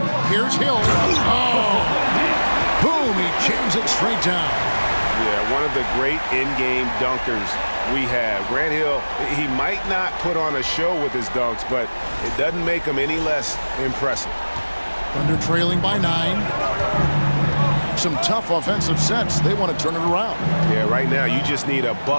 Here's Hill. Oh! Boom! He jams it straight down. Yeah, one of the great in-game dunkers we have. Grant Hill, he might not put on a show with his dunks, but it doesn't make him any less impressive. Thunder trailing by 9. Some tough offensive sets. They want to turn it around. Yeah, right now you just need a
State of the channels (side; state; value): both; inverted; correlation -1.00